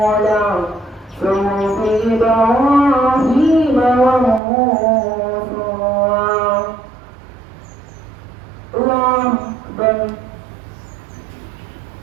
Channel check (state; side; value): drops out; left; at 4.4 s